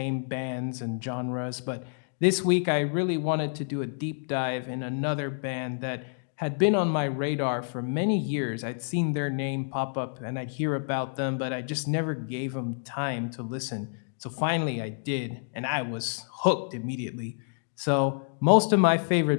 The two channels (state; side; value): silent; right; digital silence